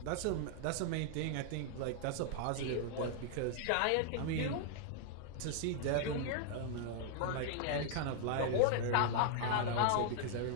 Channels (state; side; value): different; both; correlation -0.01